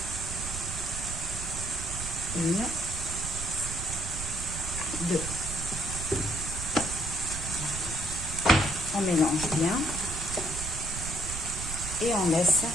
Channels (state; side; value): noise; right; rumble, 7 dB below the sound